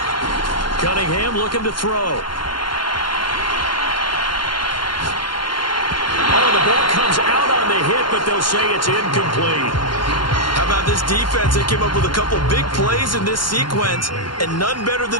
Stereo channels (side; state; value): right; late; 0.72 ms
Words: Cunningham looking to throw. Oh, the ball comes out on the hit, but they'll say it's incomplete. How about this defense? They came up with a couple big plays in this sequence, and none better